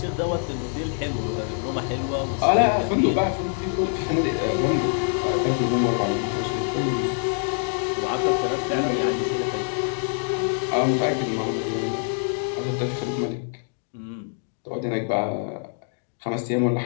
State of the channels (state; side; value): silent; right; 59 dB below the other